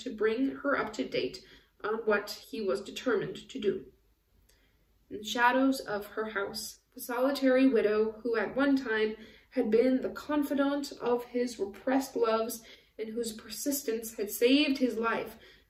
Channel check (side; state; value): both; identical; correlation 1.00